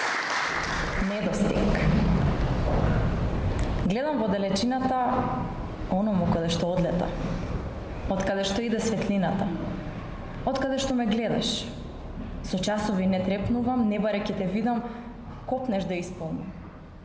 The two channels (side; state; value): both; identical; correlation 1.00